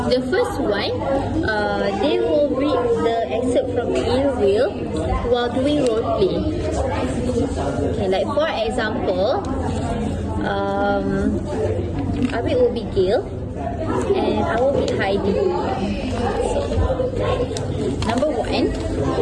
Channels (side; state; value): both; identical; correlation 1.00